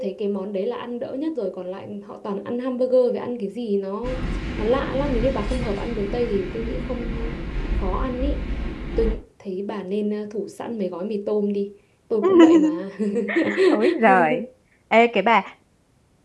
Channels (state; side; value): identical; both; correlation 1.00